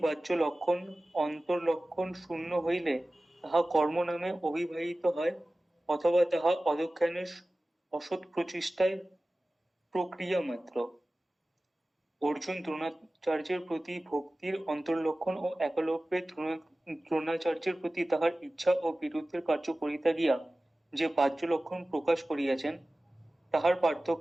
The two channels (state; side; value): normal; both; correlation 0.97